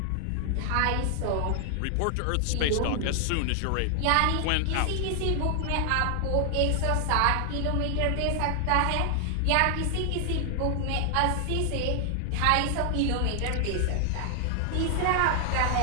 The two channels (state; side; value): different; both; correlation 0.00